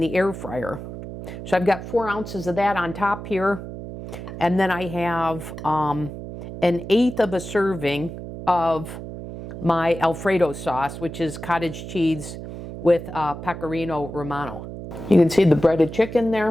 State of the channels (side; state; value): right; noise; hum, 10 dB below the sound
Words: air fryer. So I've got 4 ounces of that on top here. And then I have an 1/8 of a serving of my Alfredo sauce, which is cottage cheese with pecorino romano. You can see the breaded chicken